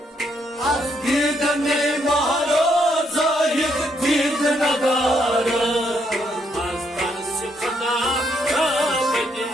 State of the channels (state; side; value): normal; both; correlation 0.74